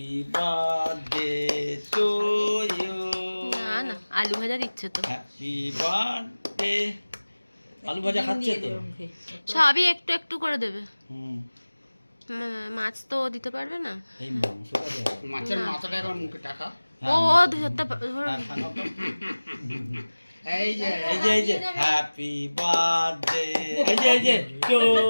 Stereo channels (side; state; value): both; inverted; correlation -1.00